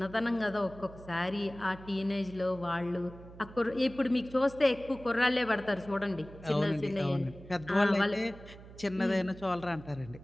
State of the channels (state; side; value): noise; right; hum, 17 dB below the sound